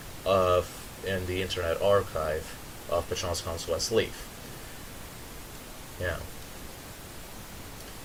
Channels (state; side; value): identical; both; correlation 1.00